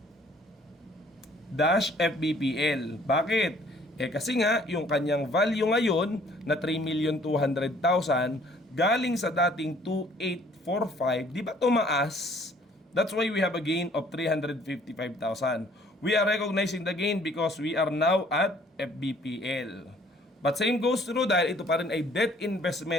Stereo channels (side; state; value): both; normal; correlation 0.58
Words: dash FVPL. Bakit? Kasi nga yung kanyang value ngayon na 3,200,000 galing sa dating 2,845, di ba tumaas? That's why we have a gain of 355,000. We are recognizing the gain because we are now at FVPL. But same goes through dahil ito pa rin ay debt